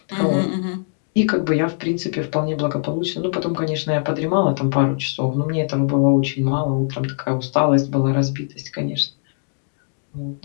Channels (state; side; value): silent; right; digital silence